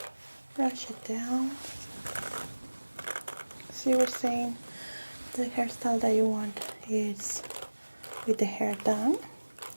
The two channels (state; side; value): inverted; both; correlation -1.00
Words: brush it down. So you were saying the hairstyle that you want is with the hair down.